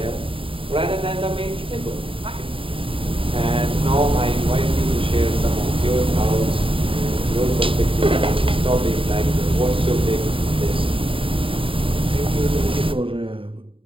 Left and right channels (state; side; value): late; left; 0.26 ms